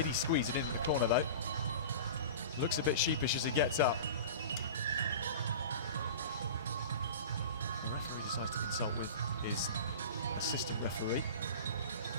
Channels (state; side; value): inverted; both; correlation -0.34